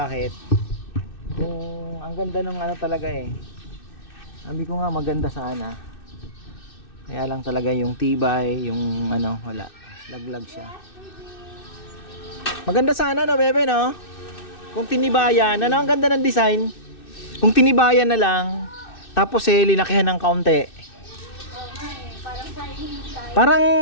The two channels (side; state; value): right; late; 2.6 ms